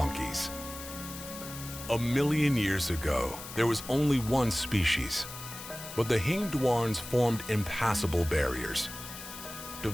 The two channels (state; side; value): noise; left; hiss, 12 dB below the sound